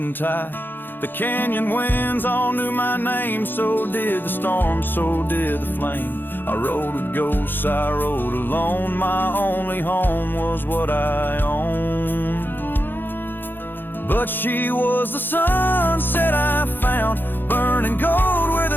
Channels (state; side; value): late; right; 0.095 ms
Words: tie. The canyon winds all knew my name, so did the storm, so did the flame. I rode with ghosts, I rode alone, my only home was what I owned. But she was the sunset I found, burning gold where